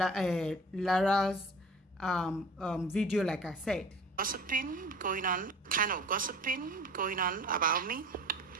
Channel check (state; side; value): normal; both; correlation 0.43